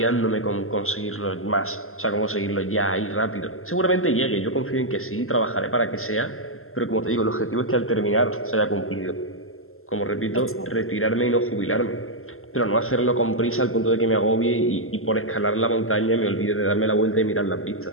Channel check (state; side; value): late; right; 0.62 ms